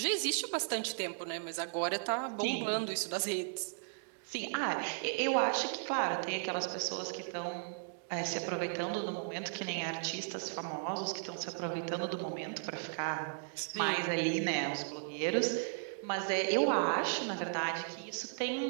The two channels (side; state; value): left; silent; digital silence